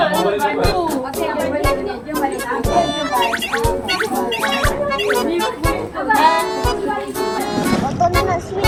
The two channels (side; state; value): both; identical; correlation 1.00